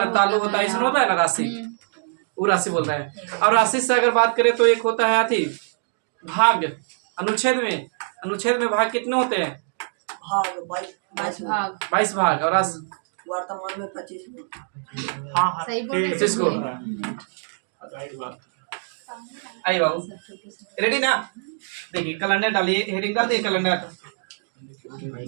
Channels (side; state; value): left; silent; 63 dB below the other